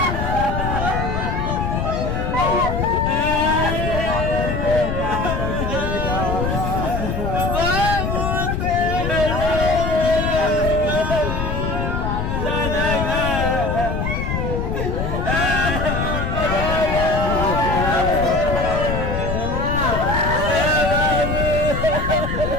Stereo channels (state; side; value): noise; left; rumble, 2 dB below the sound